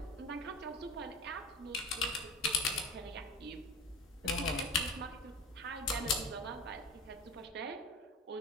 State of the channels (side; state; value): both; normal; correlation 0.34